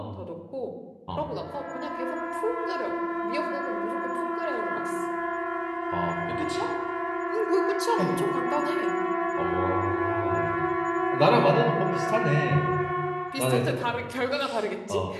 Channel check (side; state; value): both; identical; correlation 1.00